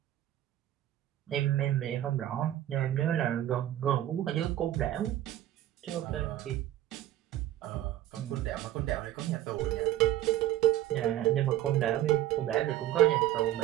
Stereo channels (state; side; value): quieter; left; 13.4 dB